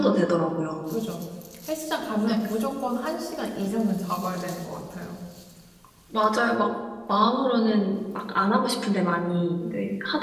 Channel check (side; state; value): both; identical; correlation 1.00